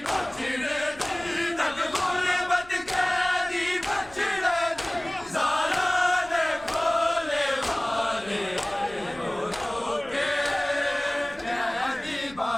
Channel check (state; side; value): noise; left; rumble, 22 dB below the sound